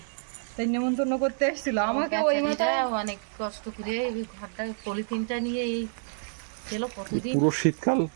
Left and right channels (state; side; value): silent; left; 58 dB below the other